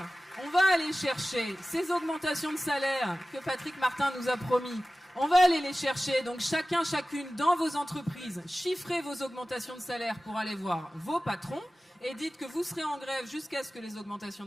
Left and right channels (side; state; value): both; normal; correlation 0.96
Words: on va aller chercher ces augmentations de salaire que Patrick Martin nous a promis. On va aller les chercher, donc chacune dans vos entreprises, chiffrez vos augmentations de salaire pour aller voir vos patrons et dites que vous serez en grève jusqu'à ce que les augmentations